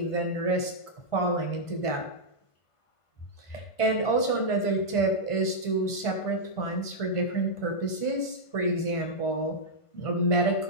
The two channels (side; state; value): right; late; 1.5 ms